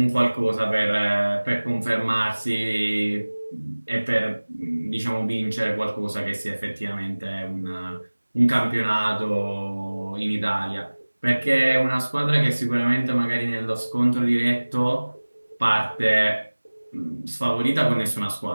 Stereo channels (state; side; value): inverted; both; correlation -1.00